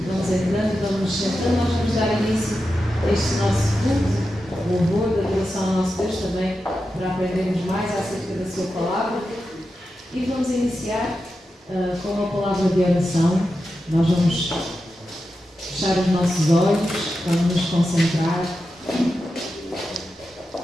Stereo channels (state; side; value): normal; both; correlation 0.90